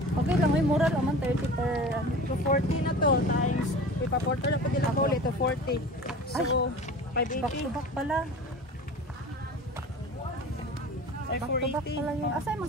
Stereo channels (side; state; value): both; normal; correlation 0.38